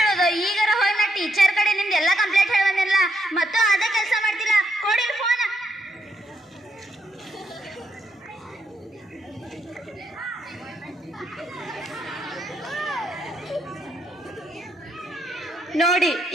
ಹೇಳೋದು? ಈಗಾರ ಹೋಗಿ ನಾ ಟೀಚರ್ ಕಡೆ ನಿಮ್ದು ಎಲ್ಲ ಕಂಪ್ಲೇಂಟ್ ಹೇಳಿ ಬಂದಿಲ್ಲ. ಮತ್ತು ಅದೇ ಕೆಲಸ ಮಾಡ್ತಿಲ್ಲ. ಕೊಡಿ ಫೋನ್. ನೋಡಿ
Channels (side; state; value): both; normal; correlation 0.77